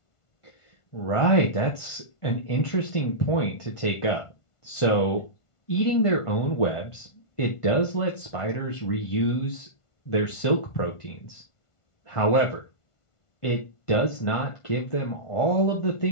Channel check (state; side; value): late; right; 1.5 ms